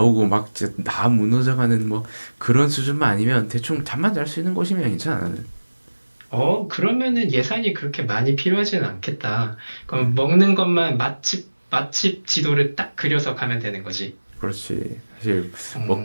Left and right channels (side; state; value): both; inverted; correlation -1.00